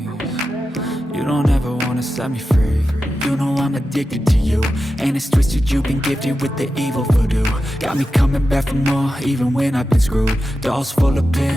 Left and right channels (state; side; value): normal; both; correlation 0.91